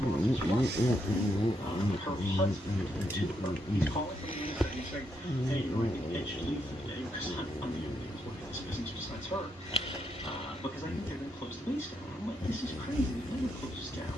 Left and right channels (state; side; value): normal; both; correlation 0.79